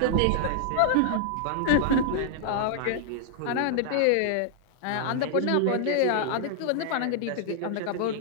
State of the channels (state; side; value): different; both; correlation -0.01